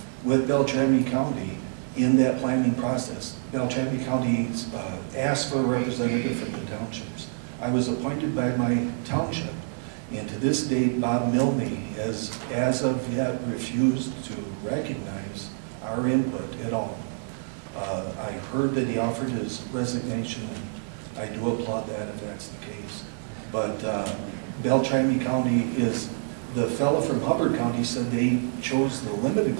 with Beltrami County in that planning process. Beltrami County asked for a representative from the townships. I was appointed by my township, and to this date, Bob Milne has, as of yet, refused to recognize our input at all. I heard that he offered his resignation, and I do applaud that if that's the case. But Beltrami County is, the fellow from Hubbard County said they chose the limited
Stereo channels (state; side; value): silent; left; 60 dB below the other